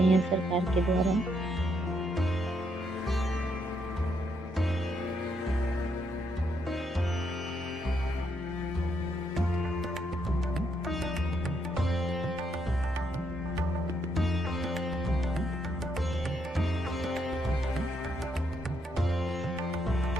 हैं सरकार के द्वारा।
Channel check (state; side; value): normal; both; correlation 0.76